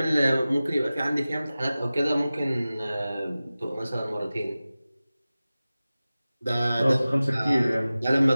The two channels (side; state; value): both; inverted; correlation -0.96